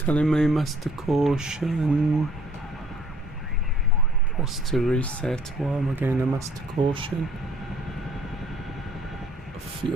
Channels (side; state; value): both; normal; correlation 0.58